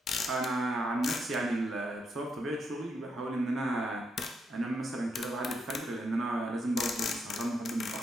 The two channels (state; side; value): normal; both; correlation 0.79